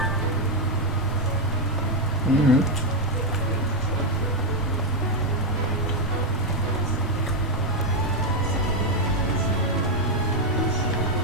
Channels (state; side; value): normal; both; correlation 0.04